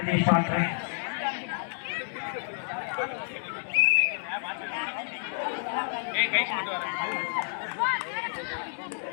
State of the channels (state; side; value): silent; right; digital silence